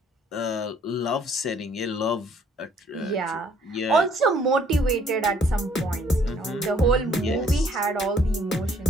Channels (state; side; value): normal; both; correlation 0.62